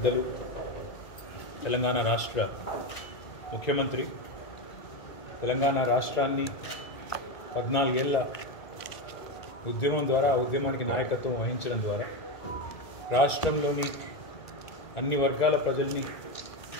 తెలంగాణ రాష్ట్ర ముఖ్యమంత్రి తెలంగాణ రాష్ట్రాన్ని 14 ఏళ్ల ఉద్యమం ద్వారా ఆ ఉద్యమానికి నాయకత్వం వహించడం ద్వారా రాష్ట్రంలోని అన్ని వర్గాల ప్రజల్ని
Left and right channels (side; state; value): right; late; 1.9 ms